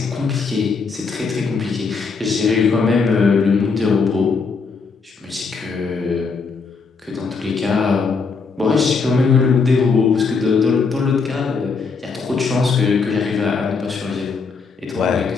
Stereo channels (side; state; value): right; quieter; 4.9 dB